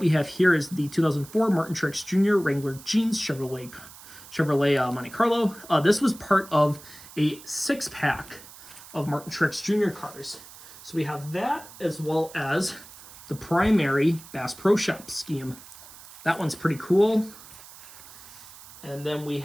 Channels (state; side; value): noise; right; hiss, 18 dB below the sound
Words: have here is the 2004 Martin Truex Jr. Wrangler Jeans Chevrolet Monte Carlo. This was part of a 6-pack of Martin Truex Jr. cars. So we have that as well as the primary Bass Pro Shop scheme. That one's pretty cool. And then we